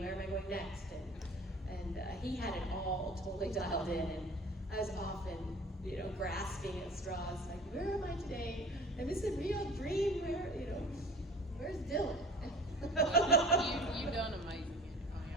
Where am I going next? And he had it all totally dialed in, and I was often, you know, grasping at straws, like, where am I today? Am this a real dream? Where, you know, where's Dylan? You've done amazing.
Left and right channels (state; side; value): normal; both; correlation 0.45